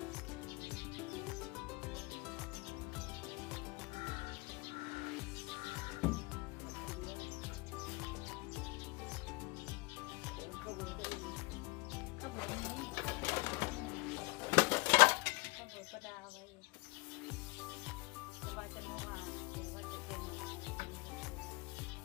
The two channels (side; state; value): right; quieter; 25.6 dB